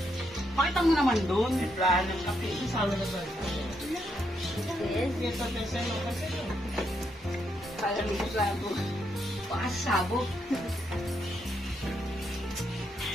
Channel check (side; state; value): both; normal; correlation 0.78